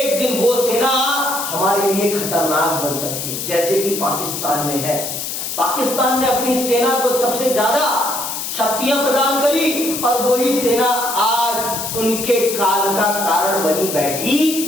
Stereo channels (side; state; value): left; noise; hiss, 5 dB below the sound